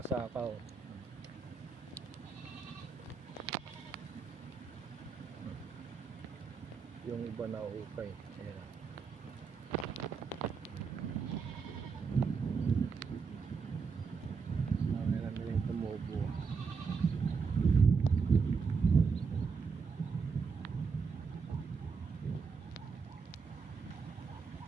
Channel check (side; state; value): left; quieter; 5.4 dB